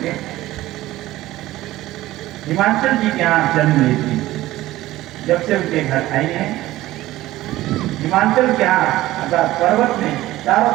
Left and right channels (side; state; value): left; quieter; 16.3 dB